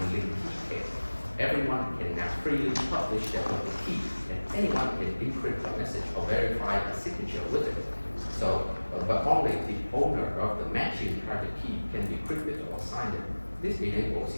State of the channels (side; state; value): both; inverted; correlation -1.00